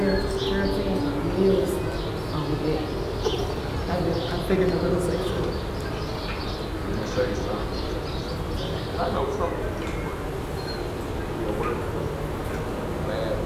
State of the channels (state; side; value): identical; both; correlation 1.00